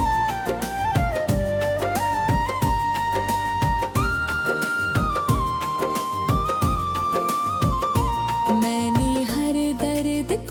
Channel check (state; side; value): identical; both; correlation 1.00